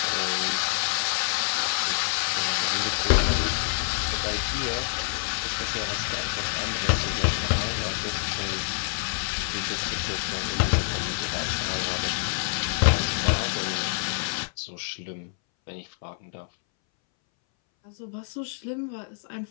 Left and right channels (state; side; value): silent; right; 60 dB below the other